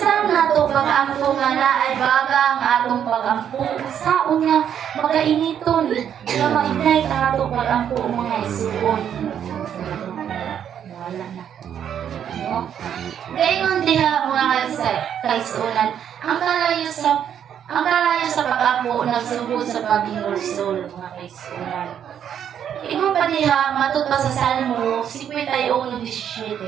nato pag-ampo nga na ay baga ang atong pag-ampo? Saan nga makainiton nga ma-ignite ang atong pag-ampo mga igsoon? Wala na. No? Gayon diha mga kaigsuonan, ang kalayo sa pag-ampo nagsugod sa paghinulsol mga kaigsuonan. Ingon pa diha matud pa sa Salmo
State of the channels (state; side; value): quieter; left; 9.1 dB